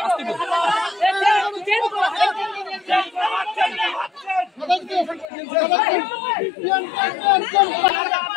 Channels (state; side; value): drops out; right; at 5.2 s